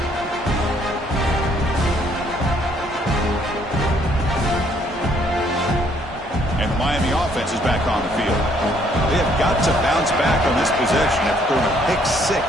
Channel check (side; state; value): both; normal; correlation 0.66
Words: And the Miami offense is back on the field. They have got to bounce back on this possession after throwing a pick 6